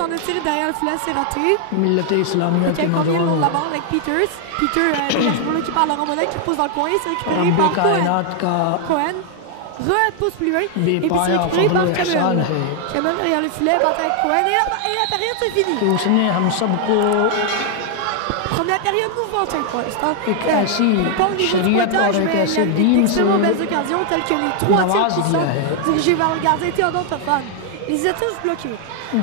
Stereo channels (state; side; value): different; both; correlation 0.00